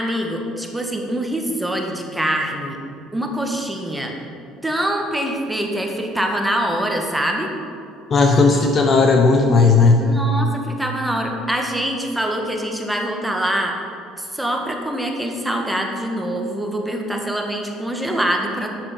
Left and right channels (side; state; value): both; normal; correlation 0.66